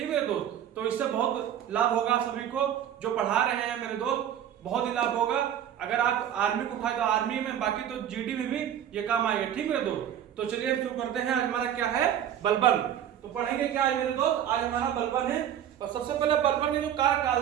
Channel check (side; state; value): left; quieter; 10.2 dB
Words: है दोस्त, तो इससे बहुत लाभ होगा सभी को, जो पढ़ा रहे हैं मेरे दोस्त, बहुत ही लाभ होगा। अगर आप आर्मी को उठाए तो आर्मी में, बाकी तो जीडी में भी ये काम आएगा। ठीक है दोस्त, तो चलिए हम शुरू करते हैं। आज हमारा क्या है, बलबन। तो पढ़ेंगे क्या आज मेरे दोस्त, आज हमारा बलबन है। और सबसे पहले बलबन के जो